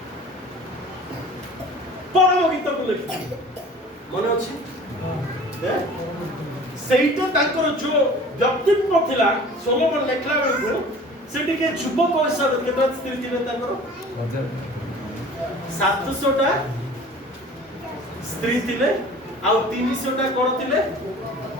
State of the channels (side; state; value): both; normal; correlation 0.45